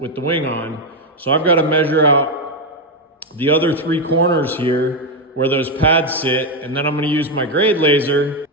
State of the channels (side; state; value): both; normal; correlation 0.05